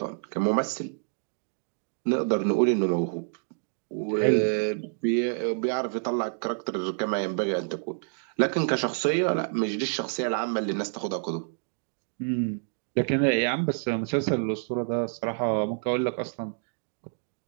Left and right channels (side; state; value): left; silent; digital silence